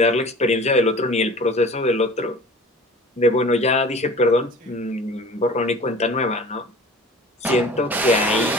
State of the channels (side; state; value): both; normal; correlation 0.42